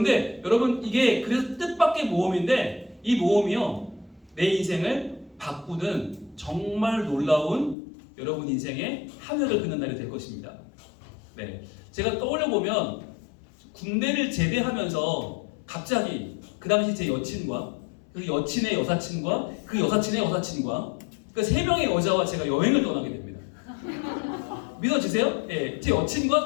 여러분 이게 그래서 뜻밖의 모험인데 이 모험이요 내 인생을 바꾸는 정말 놀라운 여러분 인생의 하늘을 긋는 날이 될 것입니다. 네, 제가 떠올려 보면 군대를 제대하면서 갑자기 그 당시 제 여친과 그 여친의 여사친과 그 여사친의 여사친과 그 세 명의 여자와 제가 여행을 떠나게 됩니다. 믿어지세요? 예, 제 여친과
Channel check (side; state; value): right; drops out; at 7.8 s